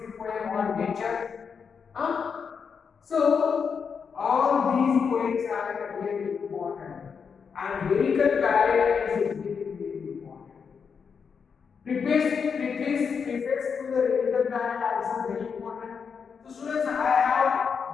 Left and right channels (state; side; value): quieter; right; 6.2 dB